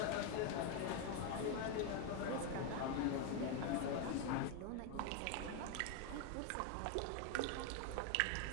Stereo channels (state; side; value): different; both; correlation 0.01